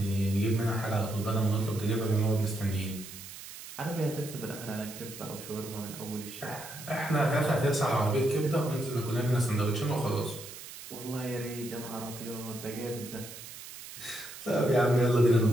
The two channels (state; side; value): noise; right; hiss, 13 dB below the sound